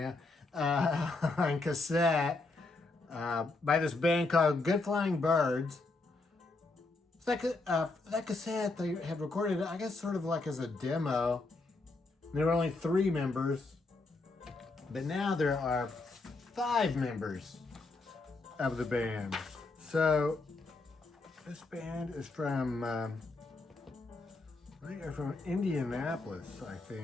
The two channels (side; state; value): right; quieter; 3.4 dB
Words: now, on cassette by this band called Good Flying Birds. So that cassette they had recorded, I guess, sort of like as a demo. There were only 3 members, but now there are 5 members of the band. So this band is from, they are from Indianapolis, I